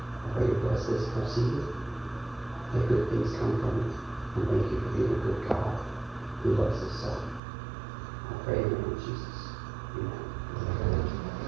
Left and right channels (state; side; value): drops out; left; at 7.4 s